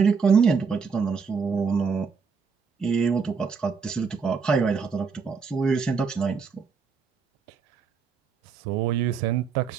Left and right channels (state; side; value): quieter; left; 5.5 dB